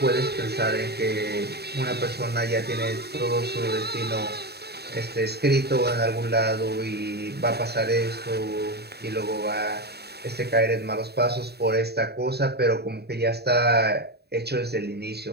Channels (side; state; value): left; late; 0.47 ms